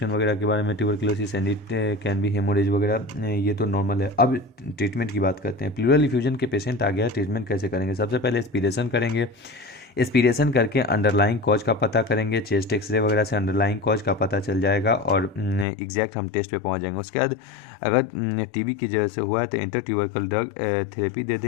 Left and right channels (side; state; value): right; drops out; at 15.7 s